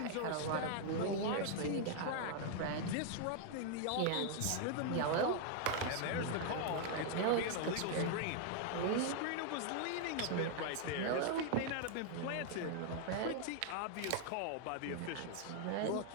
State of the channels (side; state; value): both; different; correlation 0.00